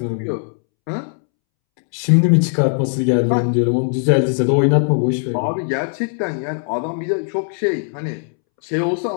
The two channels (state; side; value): silent; right; 67 dB below the other